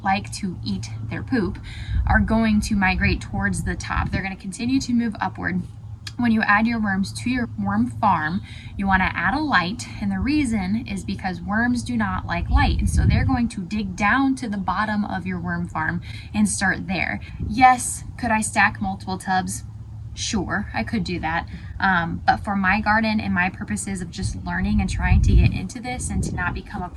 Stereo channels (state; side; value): identical; both; correlation 1.00